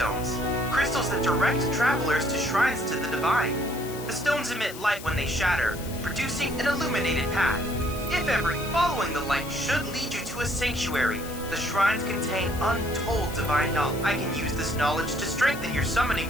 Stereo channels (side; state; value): left; noise; hiss, 14 dB below the sound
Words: crystals that direct travelers to shrines to the divine. The stones emit light when they shatter, producing an illuminated path. If ever, following the light should lead you to a sanctuary. The shrines contain untold divine knowledge. I can use this knowledge to strengthen your summoning